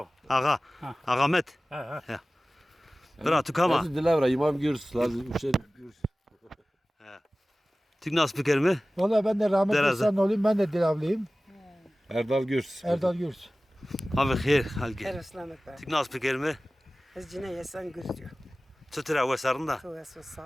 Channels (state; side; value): normal; both; correlation 0.97